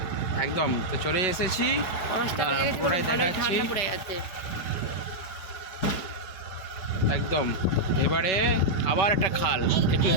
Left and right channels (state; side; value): late; right; 5.3 ms